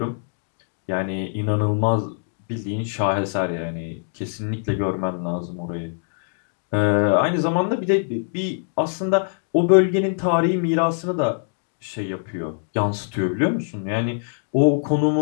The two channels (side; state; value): right; silent; digital silence